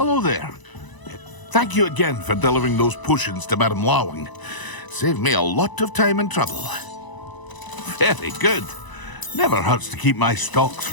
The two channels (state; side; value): late; right; 1.0 ms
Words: there. Thank you again for delivering those potions to Madame Lawing. Saved me a lot of time and trouble. Very good. Never hurts to keep my stocks